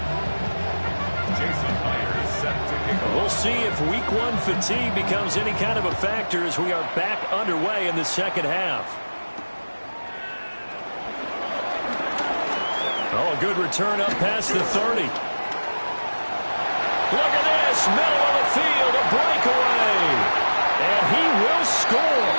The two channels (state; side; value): inverted; both; correlation -1.00